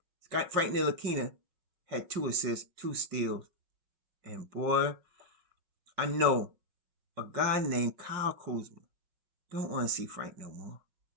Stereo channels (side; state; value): left; late; 5.5 ms